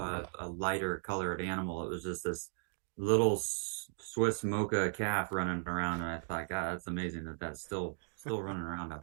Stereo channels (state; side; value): silent; left; digital silence